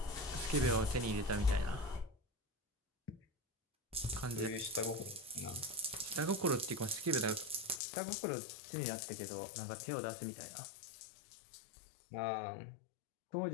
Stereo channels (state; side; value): drops out; right; at 7.8 s